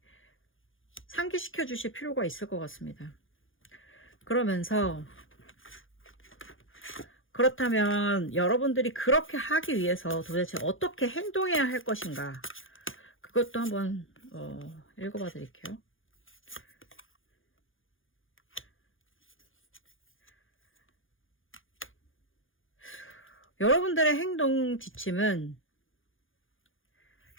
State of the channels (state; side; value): late; right; 0.58 ms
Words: 상기시켜 주실 필요가 있을 것 같습니다. 그러면서 그렇다면 여러분들이 그렇게 하기 위해서 도대체 어떻게 행동해야 할 것인가, 그것도 한번 읽어봐 드릴게요. 여러분들의 행동 지침은,